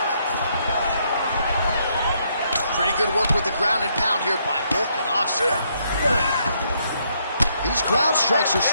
Pretty good work with the ground and pound here by Volkanovski. These ground strikes are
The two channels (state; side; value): inverted; both; correlation -0.73